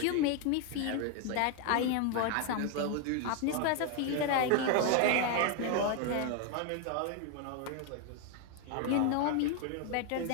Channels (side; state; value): both; different; correlation 0.01